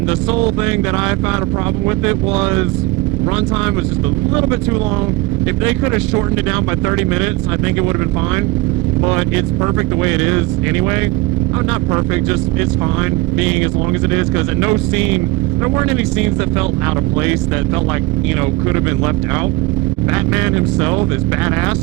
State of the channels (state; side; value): quieter; left; 18.9 dB